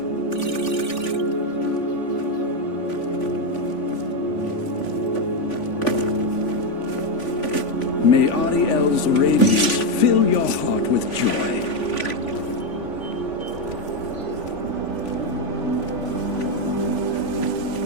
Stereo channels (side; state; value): right; late; 3.5 ms